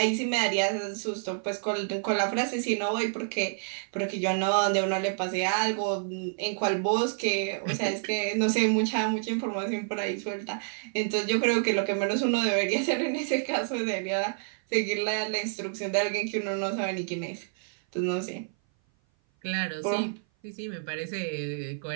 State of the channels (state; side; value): silent; left; 56 dB below the other